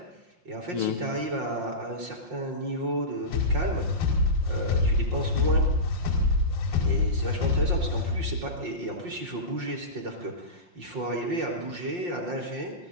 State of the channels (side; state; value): left; late; 5.6 ms